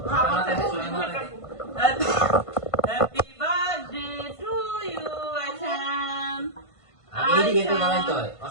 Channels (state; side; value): late; right; 1.5 ms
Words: happy birthday to you Ayesha এদিকে তো দাঁড়াইতে হয়